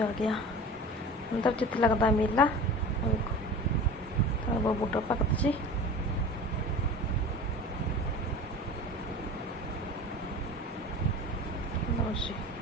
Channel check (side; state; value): both; normal; correlation 0.36